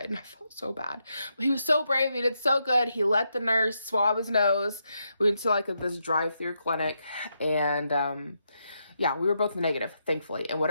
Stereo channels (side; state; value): both; inverted; correlation -0.82